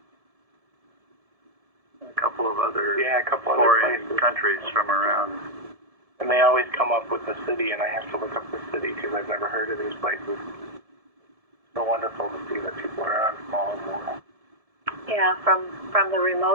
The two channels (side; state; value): left; late; 1.7 ms